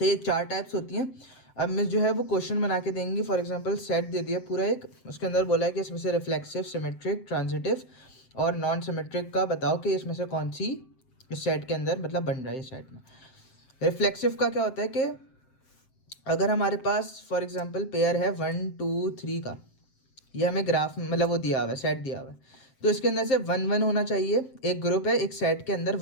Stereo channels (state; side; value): late; right; 7.6 ms